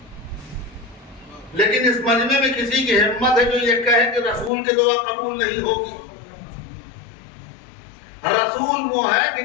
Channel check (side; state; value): right; drops out; at 4.5 s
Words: لیکن اس مجمع میں کسی کی ہمت ہے جو یہ کہے کہ رسول کی دعا قبول نہیں ہوگی. رسول وہ ہے کہ